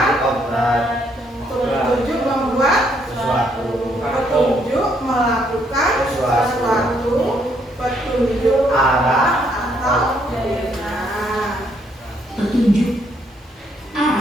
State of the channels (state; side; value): normal; both; correlation 0.71